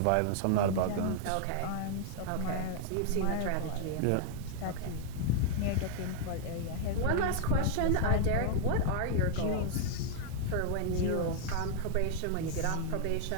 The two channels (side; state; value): both; different; correlation 0.00